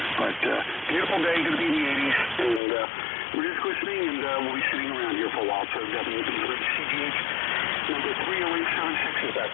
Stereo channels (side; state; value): right; drops out; at 2.6 s